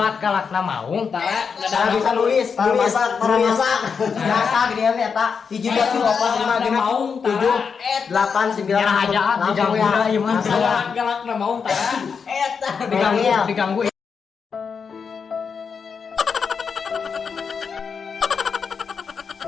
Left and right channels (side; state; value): right; quieter; 6.0 dB